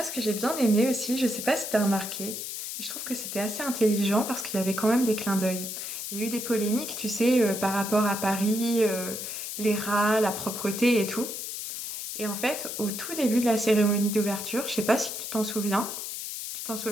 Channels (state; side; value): noise; left; hiss, 6 dB below the sound